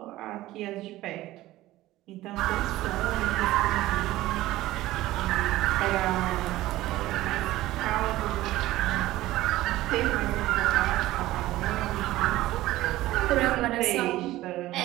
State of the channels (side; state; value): left; quieter; 16.5 dB